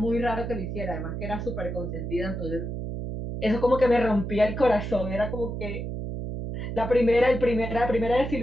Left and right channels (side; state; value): right; noise; hum, 5 dB below the sound